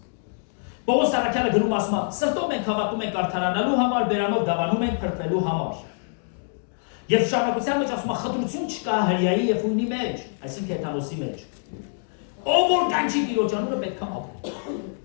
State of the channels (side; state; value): right; silent; digital silence